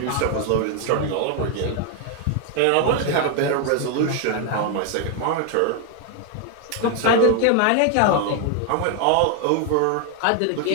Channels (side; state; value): both; different; correlation 0.01